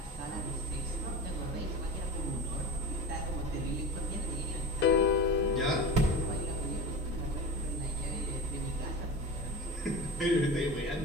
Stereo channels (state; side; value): normal; both; correlation 0.29